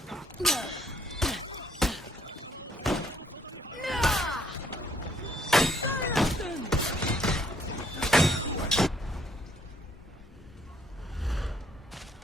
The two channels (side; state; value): both; normal; correlation 0.67